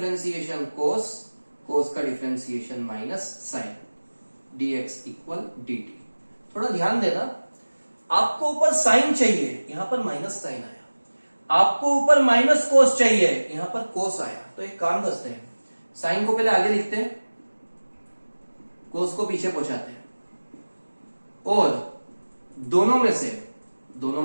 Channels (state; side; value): inverted; both; correlation -1.00